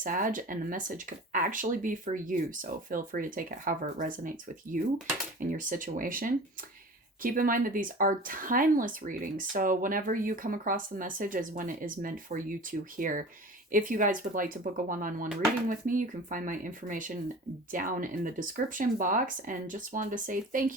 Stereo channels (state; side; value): normal; both; correlation 0.38